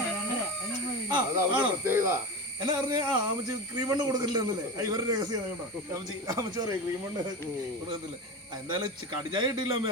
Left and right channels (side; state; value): both; normal; correlation 0.25